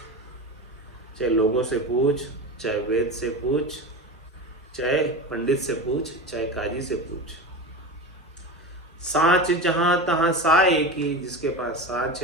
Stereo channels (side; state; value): both; normal; correlation 0.25